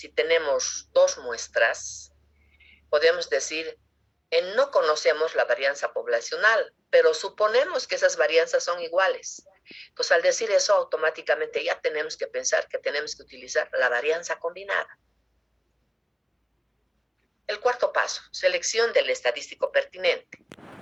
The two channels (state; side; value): identical; both; correlation 1.00